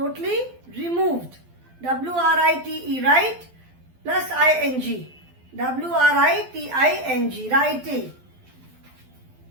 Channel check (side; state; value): left; late; 12 ms